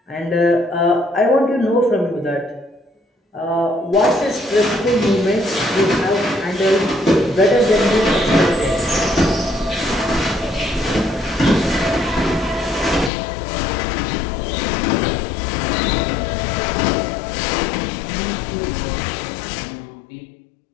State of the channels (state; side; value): drops out; right; at 13.1 s